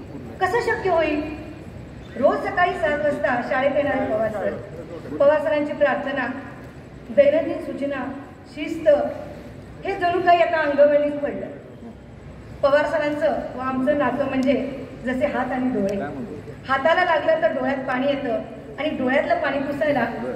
कसं शक्य होईल? रोज सकाळी 7 वाजता शाळेत येणारे पवार सर, पवार सरांची प्रार्थना, दैनंदिन सूचना, शिस्त हे जणू काही आता अंगवळणीच पडलं। पवार सरांचं व आमचं नातं म्हणजे जसे हात आणि डोळे। हाताला लागलं तर डोळ्यात पाणी येतं आणि डोळ्यातलं पाणी पुसायला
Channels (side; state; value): both; identical; correlation 1.00